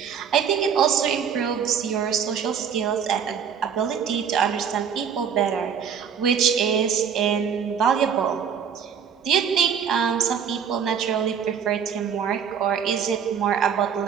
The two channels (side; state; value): left; quieter; 7.5 dB